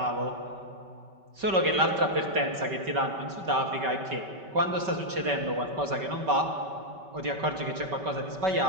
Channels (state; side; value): late; left; 5.2 ms